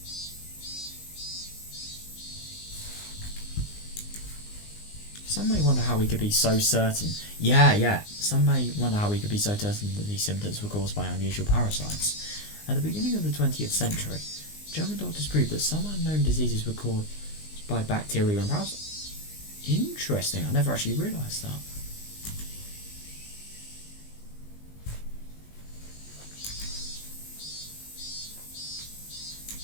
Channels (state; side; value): late; right; 19 ms